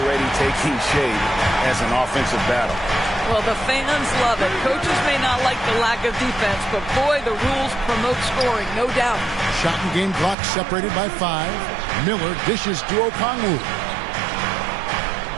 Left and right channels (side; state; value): left; drops out; at 10.4 s